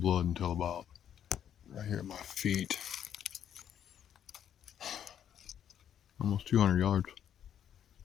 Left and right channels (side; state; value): right; quieter; 9.6 dB